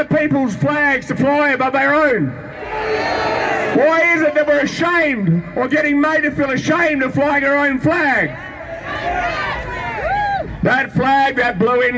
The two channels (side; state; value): both; identical; correlation 1.00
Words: people's flags to fly above our own? Why is it that we're ashamed or getting made to feel ashamed of flying our own flag? That flag, that blue